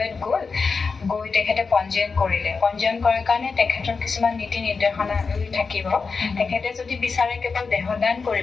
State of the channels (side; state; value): right; quieter; 4.8 dB